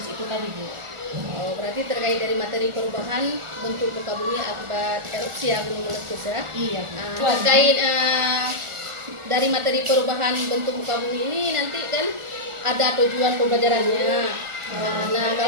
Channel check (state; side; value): late; left; 1.4 ms